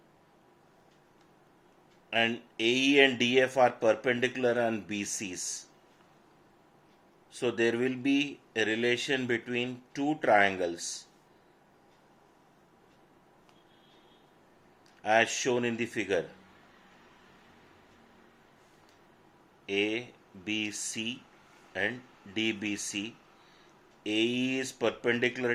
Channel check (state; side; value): identical; both; correlation 1.00